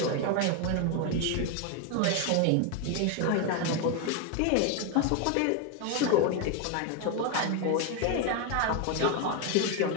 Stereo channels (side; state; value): both; different; correlation 0.01